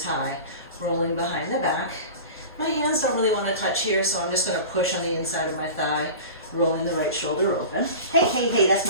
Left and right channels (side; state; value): both; inverted; correlation -0.35